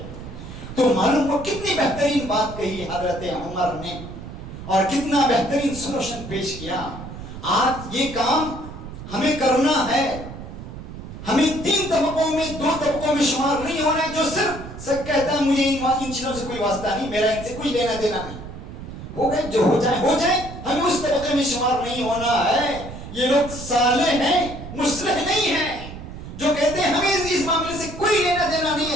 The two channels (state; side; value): noise; right; rumble, 11 dB below the sound